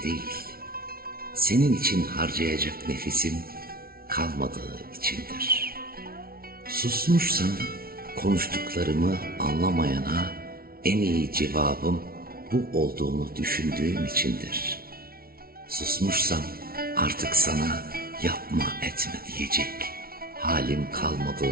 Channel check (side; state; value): left; late; 0.44 ms